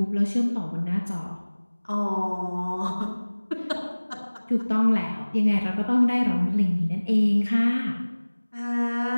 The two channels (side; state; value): both; inverted; correlation -1.00